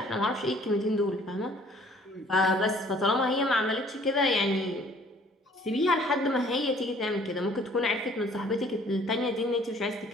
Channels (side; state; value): both; normal; correlation 0.56